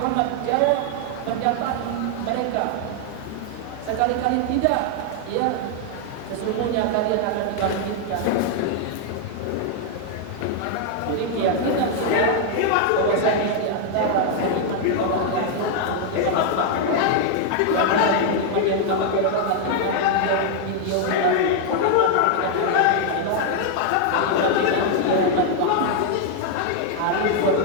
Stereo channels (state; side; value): different; both; correlation 0.00